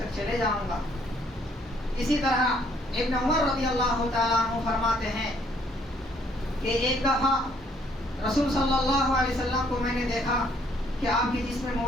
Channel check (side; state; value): both; normal; correlation 0.65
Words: چلے جاؤں گا. اسی طرح ابن عمر رضی اللہ تعالیٰ عنہ فرماتے ہیں کہ ایک دفعہ رسول صلی اللہ علیہ وسلم کو میں نے دیکھا کہ آپ کے جسم